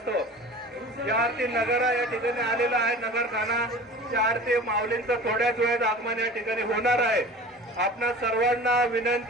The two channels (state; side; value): normal; both; correlation 0.39